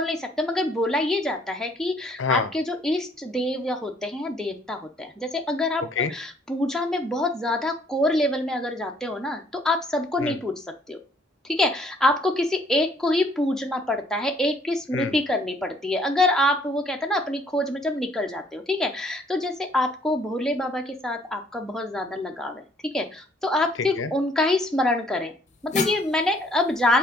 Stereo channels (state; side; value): normal; both; correlation 0.62